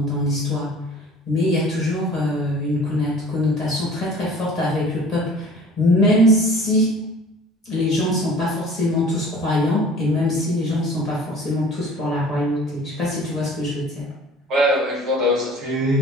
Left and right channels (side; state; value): both; normal; correlation 0.47